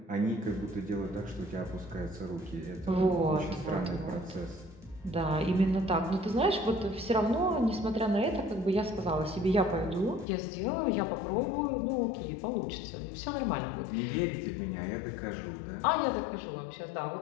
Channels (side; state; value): right; drops out; at 10.2 s